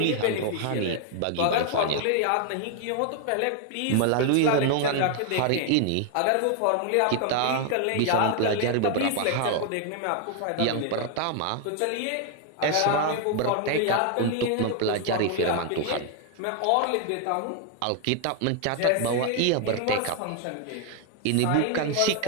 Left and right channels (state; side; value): different; both; correlation 0.00